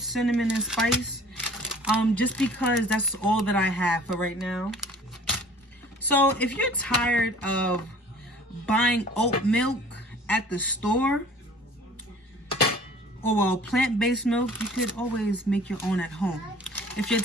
Cinnamon and Spice. Just because that's all that I have for right now. So if you're tired of buying oat milk at the store, or well, plant-based milk, you could always make your own at home. If you're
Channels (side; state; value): both; normal; correlation 0.48